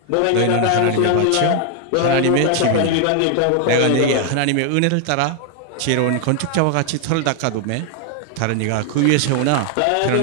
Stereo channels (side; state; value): both; different; correlation 0.00